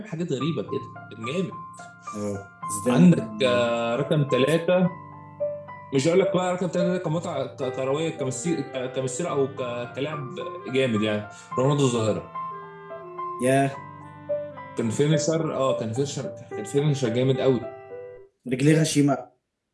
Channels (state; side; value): identical; both; correlation 1.00